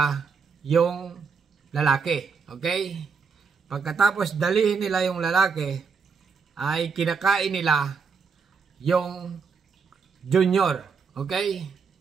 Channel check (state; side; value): quieter; left; 5.5 dB